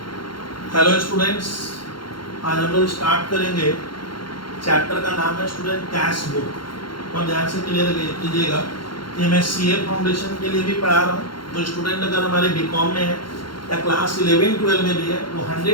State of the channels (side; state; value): right; late; 0.73 ms